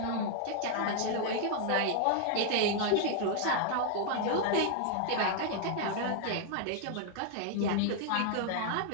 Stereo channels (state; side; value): different; both; correlation 0.00